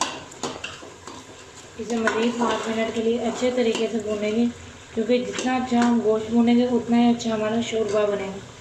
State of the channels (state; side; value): identical; both; correlation 1.00